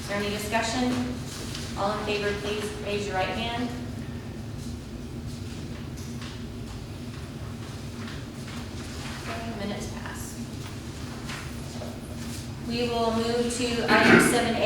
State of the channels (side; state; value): both; identical; correlation 1.00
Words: there any discussion? All in favor, please raise your right hand. Okay, minutes pass. We will move to item